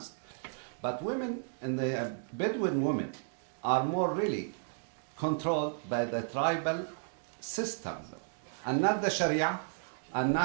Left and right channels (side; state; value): left; silent; digital silence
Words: But women, and the Bedouin women, are more really controlled by the tribal system law, and not the Sharia, and